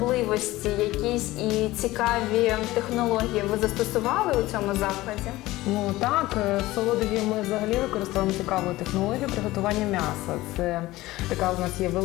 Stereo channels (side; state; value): right; quieter; 17.9 dB